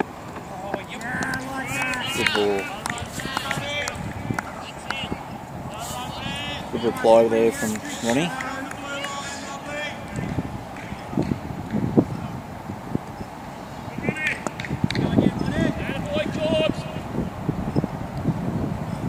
Good ball. Good reply there from Ronnie.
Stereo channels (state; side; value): identical; both; correlation 1.00